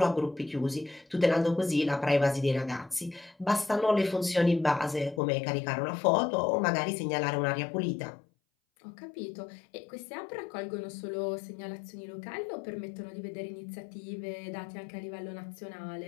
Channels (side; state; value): right; drops out; at 5.2 s